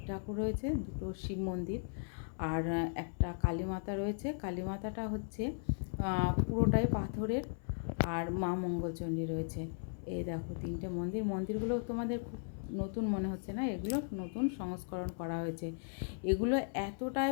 ঠাকুর রয়েছে, 2টো শিব মন্দির, আর একটা কালীমাতা রয়েছে। কালীমাতাটা হচ্ছে পুরোটাই পাথরের, আর মা মঙ্গলচণ্ডী রয়েছে। এই দেখো 3টে মন্দিরগুলো তোমাদের খুব নতুন মনে হচ্ছে না? এগুলো নতুন সংস্করণ করা হয়েছে। এগুলো এতটাই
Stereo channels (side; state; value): right; silent; 53 dB below the other